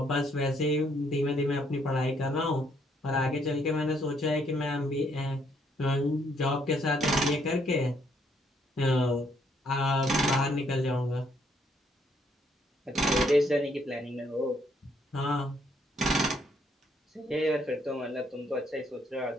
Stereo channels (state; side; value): normal; both; correlation 0.70